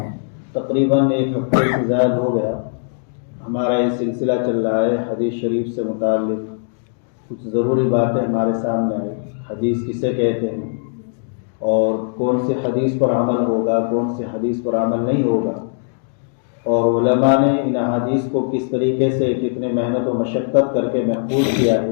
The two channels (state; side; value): silent; right; digital silence